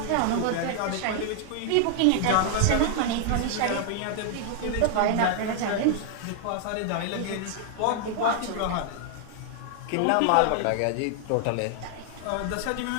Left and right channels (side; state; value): both; different; correlation 0.00